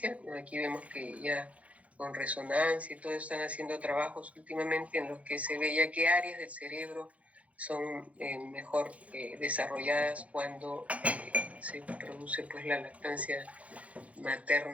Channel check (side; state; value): left; late; 0.066 ms